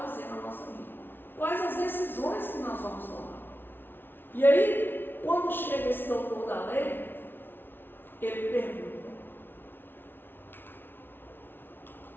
na nossa vida, quais as decisões que nós vamos tomar. E aí, quando chega esse doutor da lei, ele pergunta.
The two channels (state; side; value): late; right; 0.10 ms